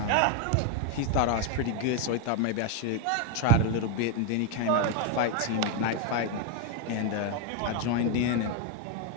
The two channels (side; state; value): both; different; correlation 0.01